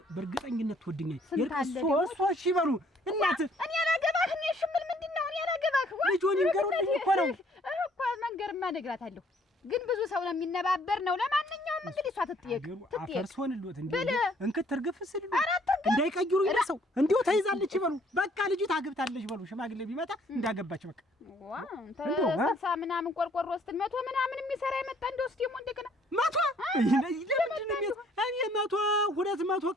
በእርግጠኝነት ትወድኛለች። እሺ በሉ እናት እኔ አላገባህ እኔ ሽምል ምንድነው እኔ አላገባህ ልጆን ይንገሩልኝ እኮ ነው እኮ መንገርማ እነግራታለሁ። ግን ብዙ ሰው ነው የሚነባበር ነው። ለማንኛውም እንግዲህ እሷ ትጠየቅ አፈርሶንልዎት እንዴ እንክት ትርግፍ ስል እንዳይቀይሩ ይለሰው እንዲሁ ተይዛለች ይበሉ። በቃ ልጅ ታግብታለች በሉ። ሽማግሌ ቢመጣ እንዳገባች በቃ ተሰሳ ምናምን ቆርቆሮ ስትል 100 ምናምን የሚሰራ የመጣ እንደውስ ደግሞ እንደገና 100 ለምንድን ነው እኔ 200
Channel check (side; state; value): both; normal; correlation 0.62